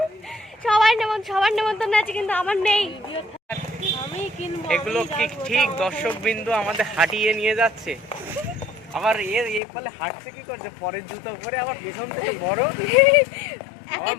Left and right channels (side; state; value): right; drops out; at 9.6 s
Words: সবার নেমন্তন্ন আছে কিন্তু আমার নেই। এগুলো কি ঠিক দর্শক বিন্দু আমাদের হাঁটিয়ে নিয়ে যাচ্ছে, আবার এ ফলে হাঁটছে কি করছে পরের জুতো পরে, আবার পেছন থেকে বড় আবার